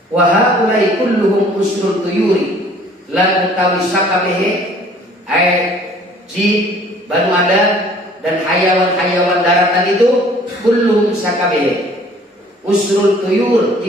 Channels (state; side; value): normal; both; correlation 0.55